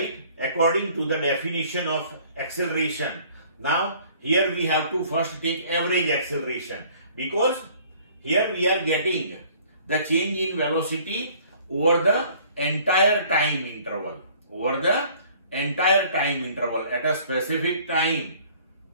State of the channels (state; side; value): inverted; both; correlation -0.54